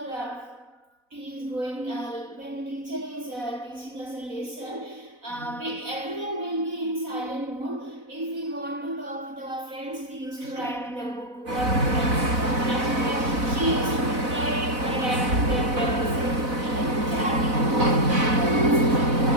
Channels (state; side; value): late; left; 4.0 ms